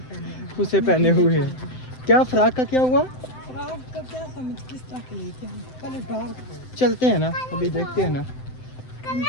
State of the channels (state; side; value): late; right; 7.8 ms